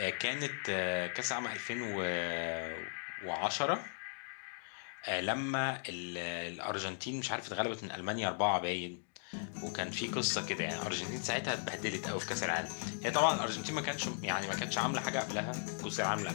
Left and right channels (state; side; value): silent; right; digital silence